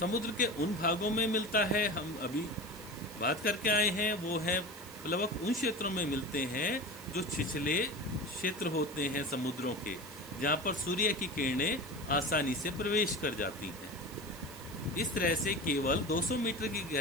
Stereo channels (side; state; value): right; noise; hiss, 17 dB below the sound